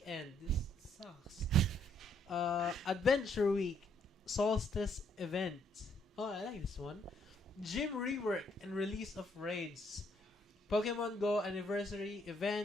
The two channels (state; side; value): normal; both; correlation 0.69